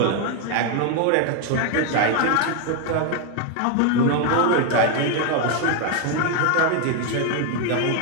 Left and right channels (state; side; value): different; both; correlation 0.01